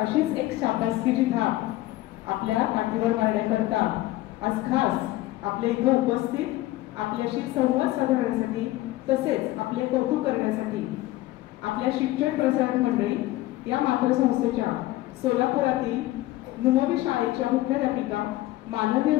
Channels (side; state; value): right; quieter; 17.0 dB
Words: एक शाबासकीची थाप आपल्या पाठीवर मारण्याकरता आज खास आपल्या इथे उपस्थित आपल्याशी संवाद साधण्यासाठी तसेच आपले कौतुक करण्यासाठी आपल्या शिक्षण प्रसारक मंडळी या मातृसंस्थेच्या सोलापुरातील नुमवी शाळेच्या मुख्याध्यापिका